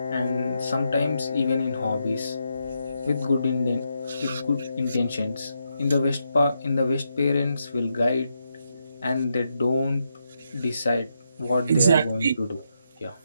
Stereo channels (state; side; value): inverted; both; correlation -0.82